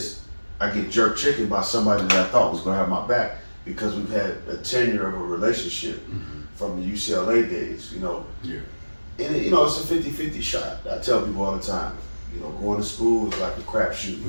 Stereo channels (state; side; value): inverted; both; correlation -1.00